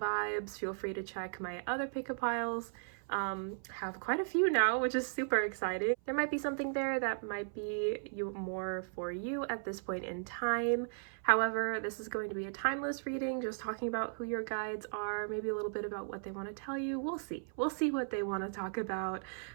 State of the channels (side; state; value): left; silent; 54 dB below the other